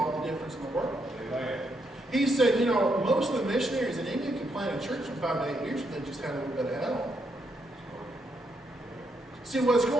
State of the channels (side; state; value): both; normal; correlation 0.78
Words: the difference in the world. Amen. He said, you know, most of the missionaries in England can plant a church in 5 to 8 years, but they just had a little bit of help. See, what's